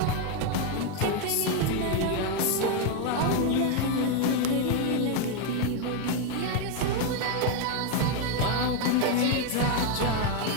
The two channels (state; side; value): different; both; correlation 0.02